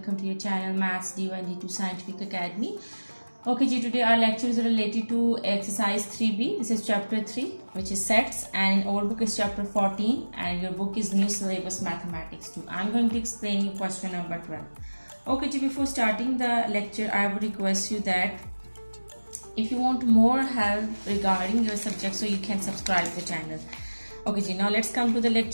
to your channel Maths D1 D2 Scientific Academy. Okay ji, today our lecture is related to exercise 3B. This is chapter 3 which is sets, and our book is chapter 14 and your book is new syllabus mathematics 2. I'm going to explain you question number 12. Okay ji, before starting the lecture I would request you that if you want more help regarding your subject, so you can subscribe the channel. Okay ji, now let's come to the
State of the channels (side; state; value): both; inverted; correlation -1.00